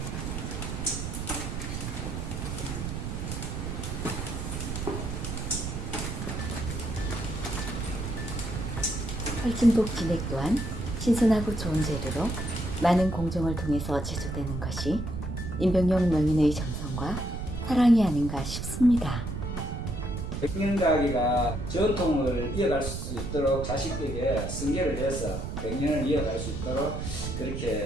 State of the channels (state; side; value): noise; right; rumble, 5 dB below the sound